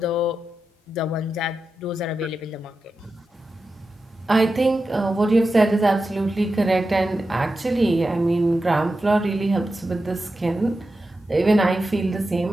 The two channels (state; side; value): normal; both; correlation 0.91